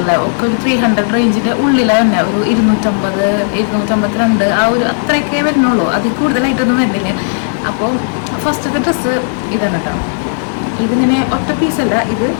ഒക്കെ ഒരു 300 റേഞ്ചിൻ്റെ ഉള്ളിലാണ് തന്നെ. ഒരു 250, 252 ആ ഒരു അത്രയൊക്കെ വരുന്നുള്ളൂ. അതിൽ കൂടുതലായിട്ടൊന്നും വരുന്നില്ല. അപ്പോൾ ഫസ്റ്റത്തെ ഡ്രസ്സ് ഇതാണ് കേട്ടോ. ഇതിങ്ങനെ ഒറ്റ പീസല്ല, ഇത്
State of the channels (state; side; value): silent; right; digital silence